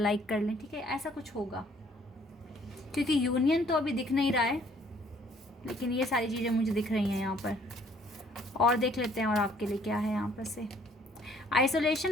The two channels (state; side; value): normal; both; correlation 0.60